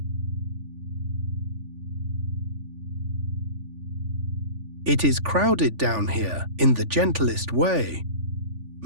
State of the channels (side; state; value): left; late; 3.5 ms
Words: It is crowded down here in the gentlest way.